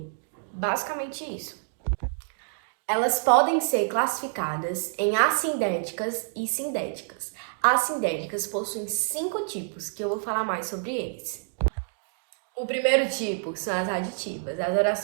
Basicamente isso. Elas podem ser classificadas em assindéticas e sindéticas. As sindéticas possuem 5 tipos, que eu vou falar mais sobre eles. O primeiro tipo são as aditivas. As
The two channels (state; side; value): silent; left; digital silence